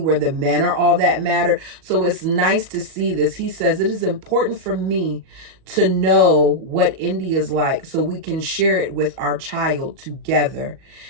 the men are all that matter. So it's nice to see this. He says, it is important for me to know what India's like so we can share it with our child together.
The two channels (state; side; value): late; left; 37 ms